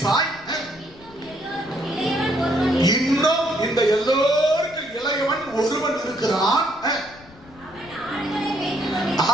இன்னும் இந்த எல்லோருக்கும் இளையவன் ஒருவன் இருக்கிறான்,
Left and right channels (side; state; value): left; noise; rumble, 23 dB below the sound